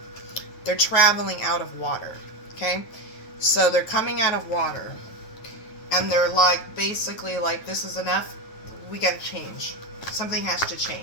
They're traveling out of water. Okay, so they're coming out of water, and they're like, basically like, this is enough. We gotta change. Something has to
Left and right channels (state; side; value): late; right; 9.2 ms